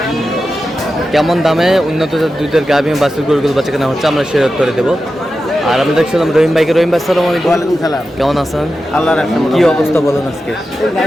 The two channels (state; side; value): normal; both; correlation 0.91